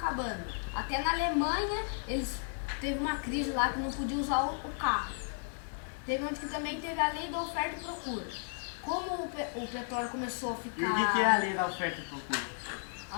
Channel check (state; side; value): silent; right; 55 dB below the other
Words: Até na Alemanha eles teve uma crise lá que não podia usar o carro. Teve onde que também teve a lei da oferta e procura. Como o petróleo começou a ficar... E o que é a lei da oferta e procura?